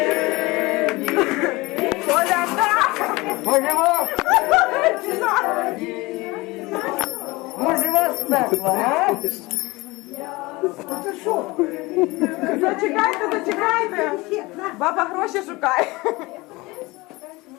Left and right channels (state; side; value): quieter; right; 22.4 dB